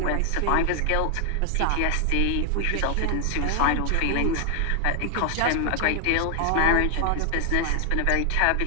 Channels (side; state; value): both; different; correlation 0.00